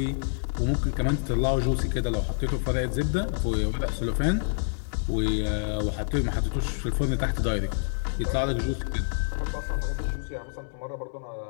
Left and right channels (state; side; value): silent; right; digital silence